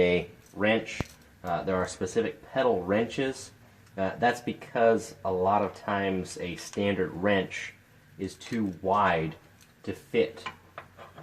wrench. There are specific pedal wrenches. That's because a lot of times a standard wrench is too wide to fit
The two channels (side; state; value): both; identical; correlation 1.00